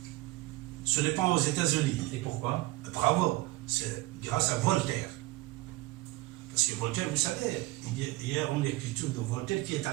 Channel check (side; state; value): left; quieter; 19.7 dB